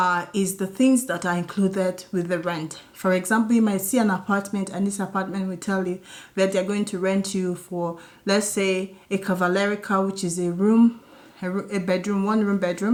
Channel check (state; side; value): identical; both; correlation 1.00